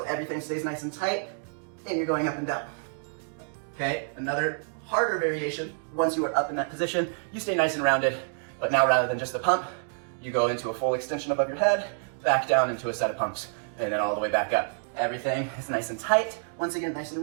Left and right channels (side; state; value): left; silent; digital silence